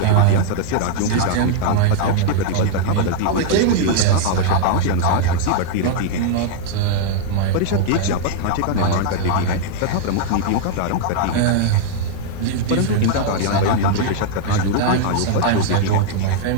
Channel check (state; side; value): different; both; correlation 0.00